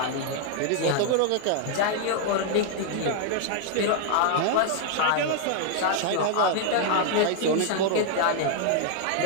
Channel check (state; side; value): different; both; correlation 0.00